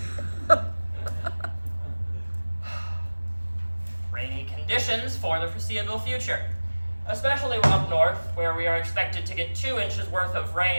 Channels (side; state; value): both; inverted; correlation -1.00